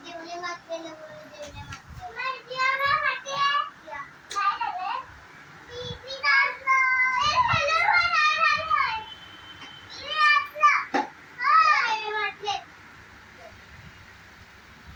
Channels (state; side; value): identical; both; correlation 1.00